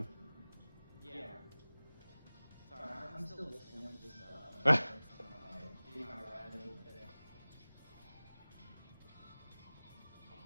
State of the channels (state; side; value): inverted; both; correlation -0.99